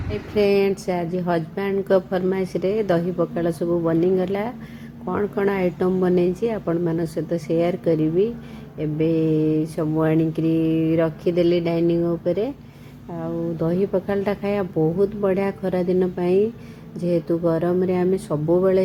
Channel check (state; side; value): identical; both; correlation 1.00